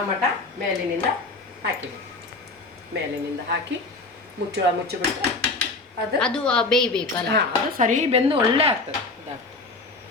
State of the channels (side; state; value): right; quieter; 3.3 dB